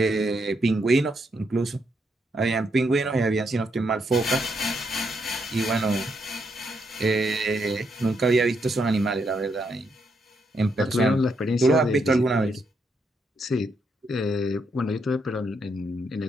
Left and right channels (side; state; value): both; normal; correlation 0.78